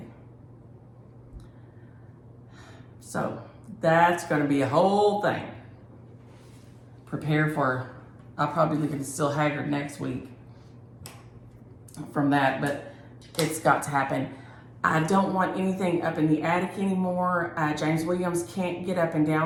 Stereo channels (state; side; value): identical; both; correlation 1.00